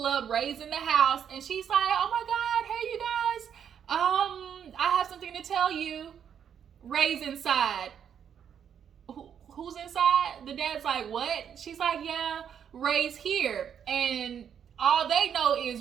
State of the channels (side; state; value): left; quieter; 8.3 dB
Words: up, Ray's in the house, and she's like, oh my God, hey you guys, I have something to tell you. Ray's inside. Who's inside? The dad's like, what? She's like, yeah, Ray's here. And all they know is